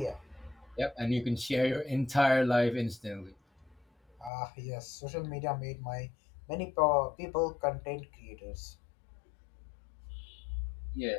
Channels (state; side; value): drops out; right; at 4.3 s